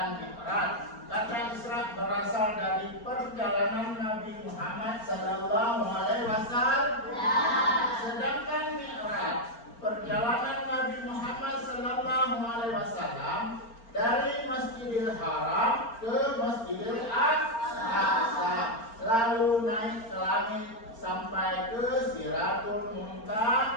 Mi'raj. Kata Isra berasal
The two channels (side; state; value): right; late; 4.4 ms